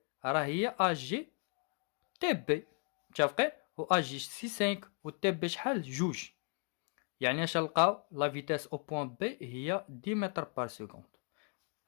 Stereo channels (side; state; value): right; quieter; 39.7 dB